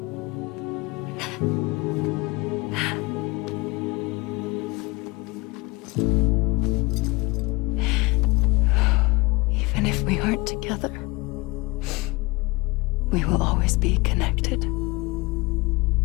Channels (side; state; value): right; quieter; 24.4 dB